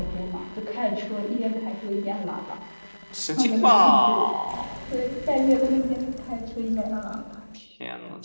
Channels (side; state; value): both; inverted; correlation -1.00